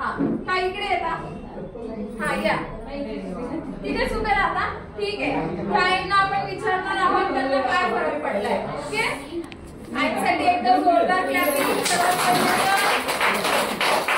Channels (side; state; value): both; identical; correlation 1.00